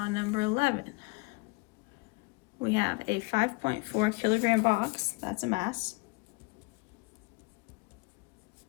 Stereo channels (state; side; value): quieter; right; 28.7 dB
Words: number 11. We have a 5.4 kilogram box, that's a mass.